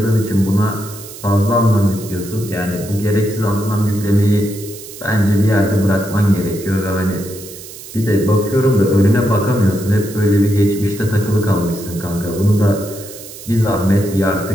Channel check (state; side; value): noise; right; hiss, 15 dB below the sound